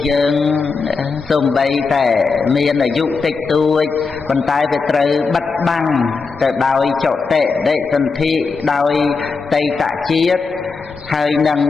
យើងសូម្បីតែមានអាយុតិចតួចប៉ុន្តែវាត្រូវបិទបាំងទៅដោយចតិដិសន្ធិដោយតីតជាតិហើយនឹង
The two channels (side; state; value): right; quieter; 4.6 dB